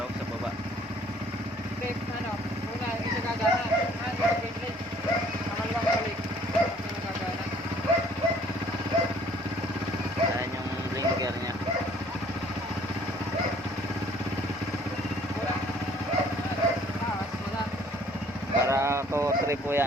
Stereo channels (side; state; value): both; normal; correlation 0.57